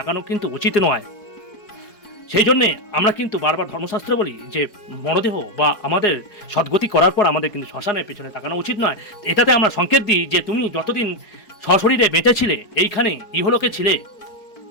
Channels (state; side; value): late; right; 4.8 ms